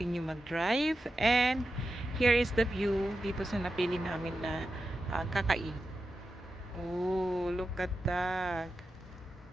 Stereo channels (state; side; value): normal; both; correlation 0.90